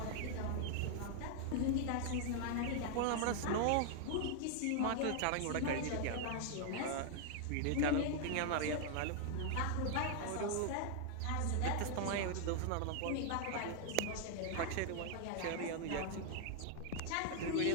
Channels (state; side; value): different; both; correlation 0.00